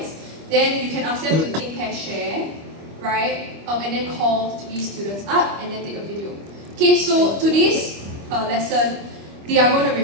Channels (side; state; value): left; late; 25 ms